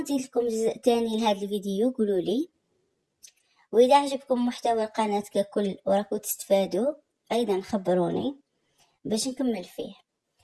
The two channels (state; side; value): identical; both; correlation 1.00